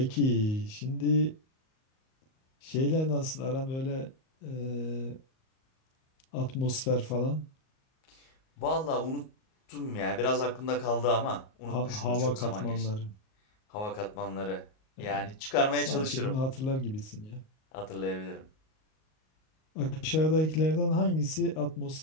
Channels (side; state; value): right; late; 38 ms